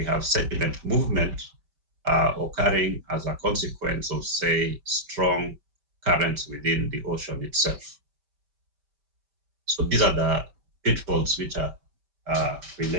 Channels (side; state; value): left; late; 5.2 ms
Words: have sediment movement occurring as a consequence of, say, strong currents within the ocean itself. So these are the pitfalls which are